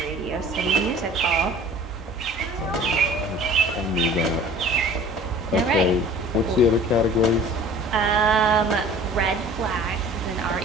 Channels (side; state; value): both; normal; correlation 0.46